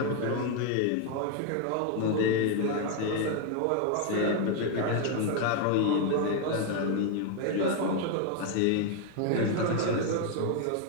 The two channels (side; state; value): both; different; correlation 0.01